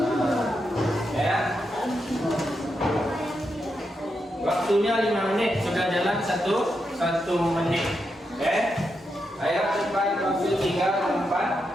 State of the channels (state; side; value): normal; both; correlation 0.84